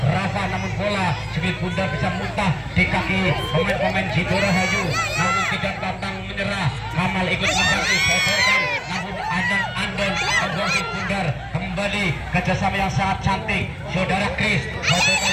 namun bola sedikit bundar bisa muntah di kaki pemain-pemain Sidorahayu, namun tidak pantang menyerah. Kamal ikut membantu sodorkan, namun Andon membuang sedikit bundar. Kembali kerjasama yang sangat cantik saudara Chris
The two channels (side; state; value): both; identical; correlation 1.00